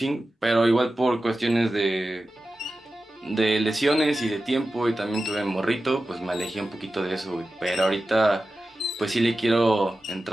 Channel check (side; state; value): both; normal; correlation 0.94